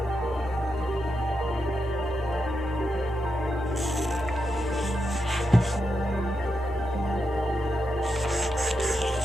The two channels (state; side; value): normal; both; correlation 0.85